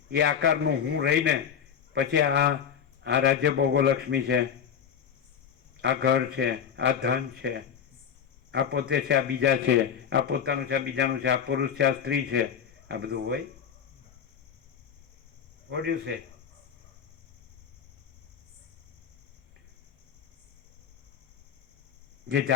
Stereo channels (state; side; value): quieter; right; 7.9 dB